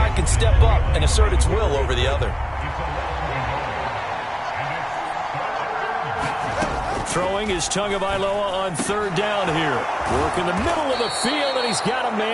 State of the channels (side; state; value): both; identical; correlation 1.00